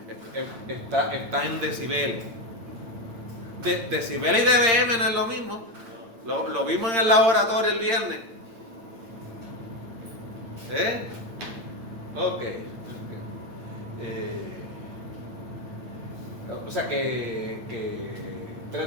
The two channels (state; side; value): late; left; 8.8 ms